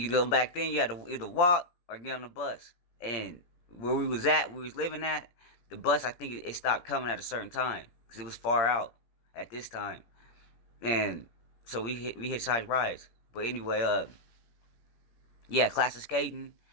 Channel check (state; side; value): late; right; 17 ms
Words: go back then, you had to either walk or get on the bus. And where we was living at, the bus I think it stopped coming at a certain time because it was far out at this time. And so we hitchhiked rides. But anyway, yeah, class of skating,